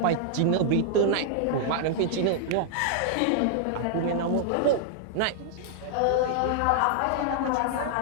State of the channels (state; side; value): different; both; correlation -0.01